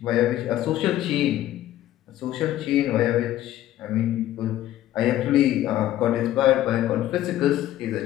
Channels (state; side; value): quieter; right; 13.4 dB